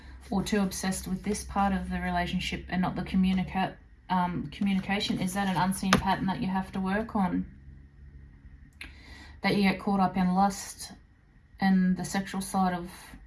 or too obsessed with this part of the relationship and not the communication. Is that an unseen pattern that you have to work on? That you get caught up in lust and the sexual side of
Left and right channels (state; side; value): identical; both; correlation 1.00